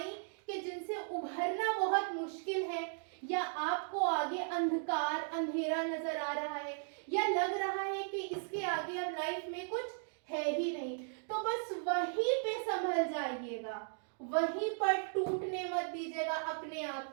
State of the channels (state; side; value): silent; left; digital silence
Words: कि जिनसे उभरना बहुत मुश्किल है, या आपको आगे अंधकार अंधेरा नजर आ रहा है, या लग रहा है कि इसके आगे अब लाइफ में कुछ है ही नहीं, तो बस वहीं पे संभल जाइएगा, वहीं पर टूटने मत दीजिएगा अपने आप